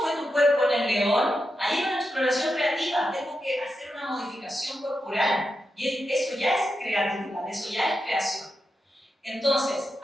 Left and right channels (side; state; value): both; normal; correlation 0.88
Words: fue tu cuerpo en el león? Ahí hay una exploración creativa. Tengo que hacer una modificación corporal. Y eso ya es creatividad, eso ya es creación. Entonces,